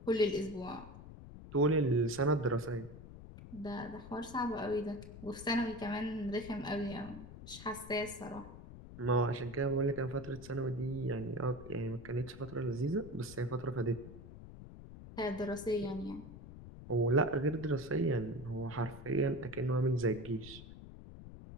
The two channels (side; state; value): left; noise; rumble, 14 dB below the sound